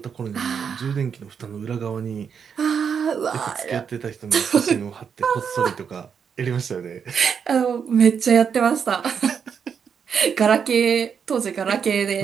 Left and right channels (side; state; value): left; quieter; 6.9 dB